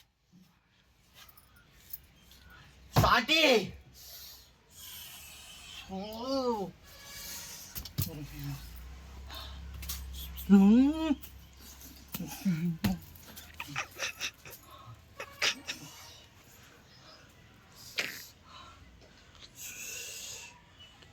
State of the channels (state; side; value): identical; both; correlation 1.00